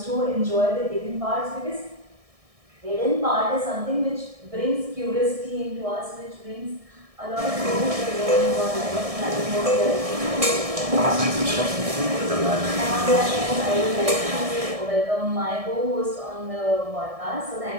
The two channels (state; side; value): late; left; 1.6 ms